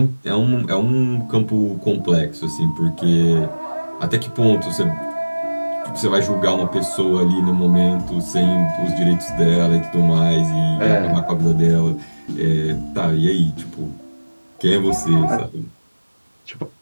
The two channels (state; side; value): inverted; both; correlation -1.00